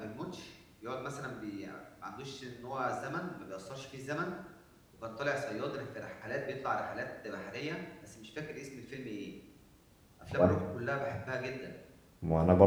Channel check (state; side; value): identical; both; correlation 1.00